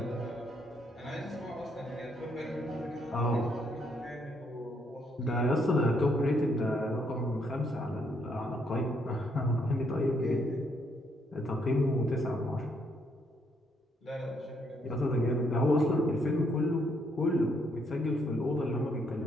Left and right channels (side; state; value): both; normal; correlation 0.72